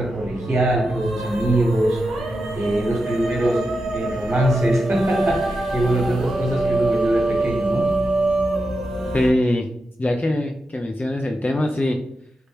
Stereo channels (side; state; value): both; normal; correlation 0.88